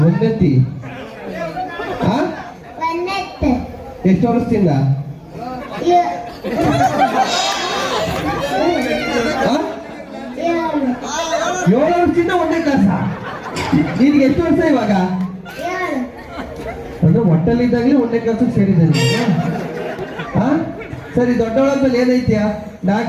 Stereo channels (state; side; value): identical; both; correlation 1.00